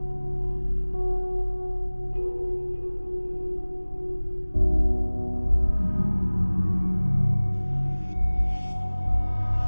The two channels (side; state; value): both; inverted; correlation -1.00